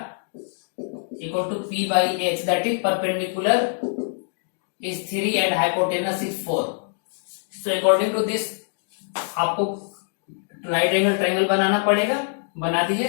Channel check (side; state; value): right; silent; digital silence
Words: equal to p/h, that is perpendicular is 3 and hypotenuse is 4। So according to this आपको राइट एंगल ट्रायंगल बनाना पड़ेगा, बना दीजिए।